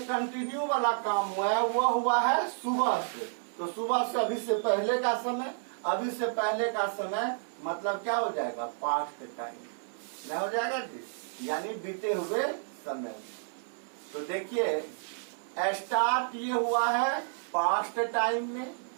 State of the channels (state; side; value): silent; left; digital silence